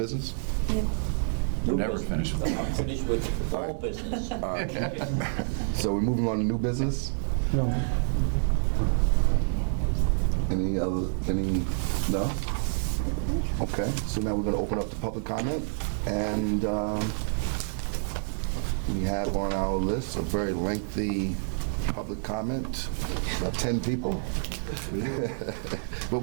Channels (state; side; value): silent; left; digital silence